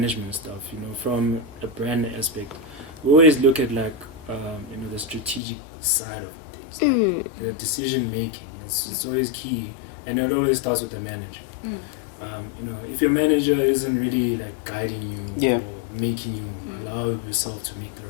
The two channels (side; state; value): right; drops out; at 5.4 s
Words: stuff, you know, from a brand aspect, we always look at, like, you know, the strategic side of things, like the decision making. It's always key, and it always starts with the manager. You know, if your manager isn't really like guiding you or making you allow yourself to make the